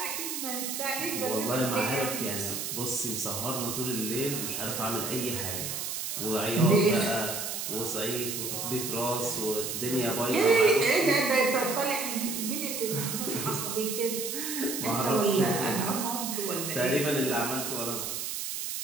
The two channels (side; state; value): right; noise; hiss, 4 dB below the sound